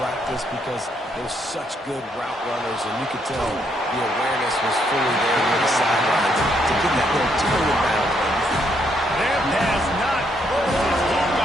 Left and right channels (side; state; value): both; normal; correlation 0.74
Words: because they're such good route runners, and you could tell the awareness was fully there near the sideline to get that little toe down. Their pass not close. He